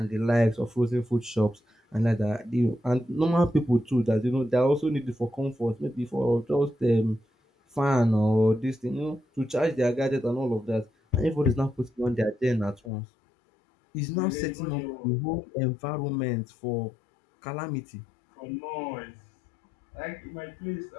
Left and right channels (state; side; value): drops out; right; at 12.9 s